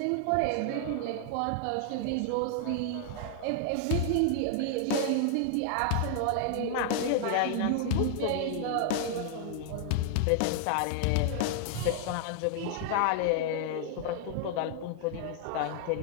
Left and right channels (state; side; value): different; both; correlation 0.00